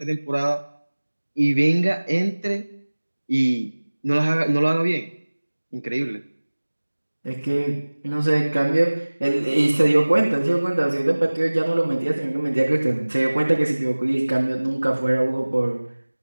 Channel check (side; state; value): both; inverted; correlation -1.00